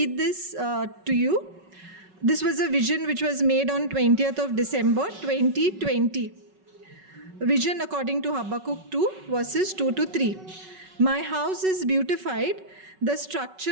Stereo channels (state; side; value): late; left; 5.3 ms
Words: this to you. This was a vision which was made on 20th of December 2020. Vision according to Habakkuk 2 verses 2 to 3. My house is beautified, the structure